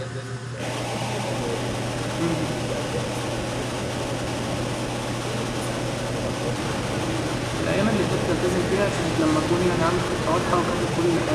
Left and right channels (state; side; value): identical; both; correlation 1.00